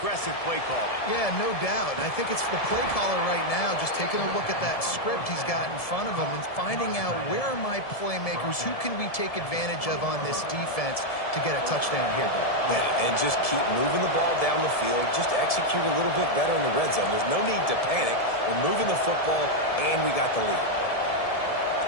play calling. Yeah, no doubt. I think it's the play caller right now just taking a look at that script he's got in front of him and finding out where are my playmakers, who can we take advantage of on this defense to get a touchdown here, Bill. Yeah, and just keep moving the ball down the field. Just execute a little bit better in the red zone. There's no need to panic. We're moving the football, and we got the lead.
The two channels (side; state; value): right; late; 1.7 ms